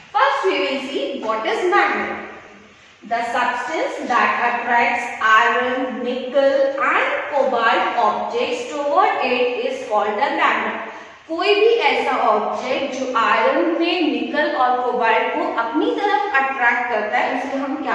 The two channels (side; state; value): both; identical; correlation 1.00